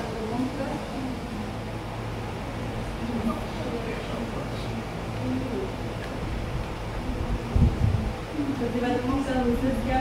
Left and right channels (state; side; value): identical; both; correlation 1.00